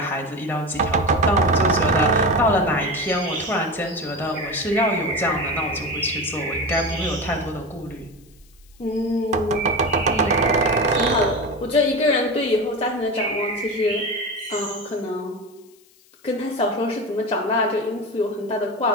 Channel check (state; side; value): noise; left; hiss, 30 dB below the sound